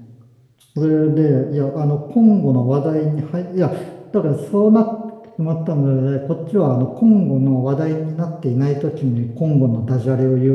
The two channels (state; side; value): identical; both; correlation 1.00